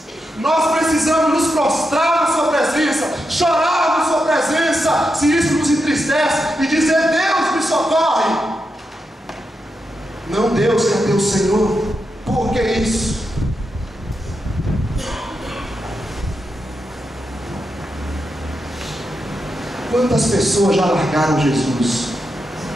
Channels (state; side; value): normal; both; correlation 0.86